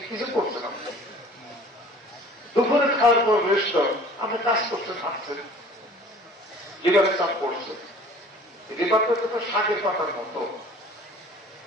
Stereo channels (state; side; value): normal; both; correlation 0.48